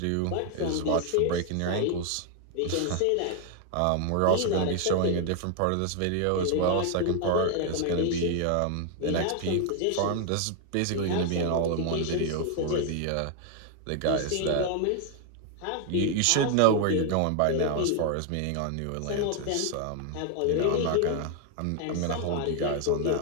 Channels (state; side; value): different; both; correlation 0.00